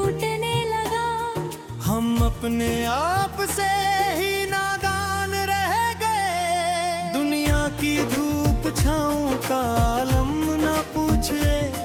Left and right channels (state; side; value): identical; both; correlation 1.00